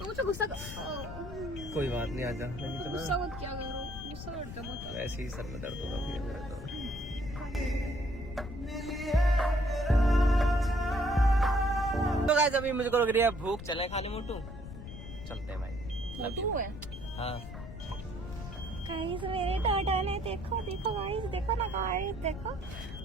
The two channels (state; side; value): noise; left; rumble, 10 dB below the sound